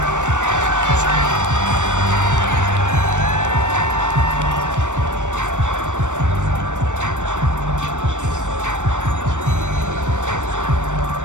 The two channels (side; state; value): left; late; 0.85 ms